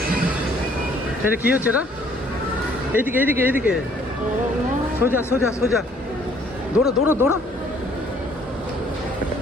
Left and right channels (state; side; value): normal; both; correlation 0.61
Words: এটা কি হচ্ছে? এটা এইদিকে এইদিকে এইদিকে, সোজা সোজা সোজা, দৌড়ো দৌড়ো দৌড়ো।